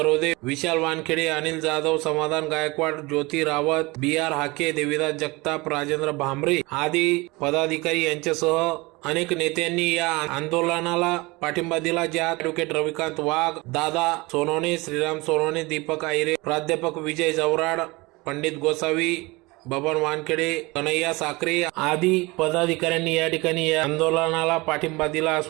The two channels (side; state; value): left; quieter; 23.6 dB